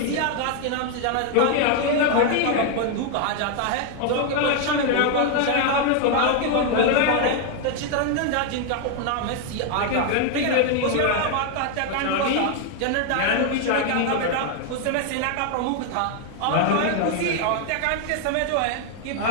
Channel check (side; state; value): both; different; correlation 0.01